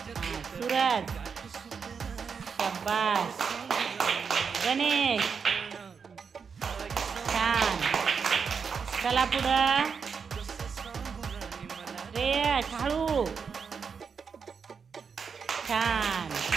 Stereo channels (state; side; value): quieter; left; 6.0 dB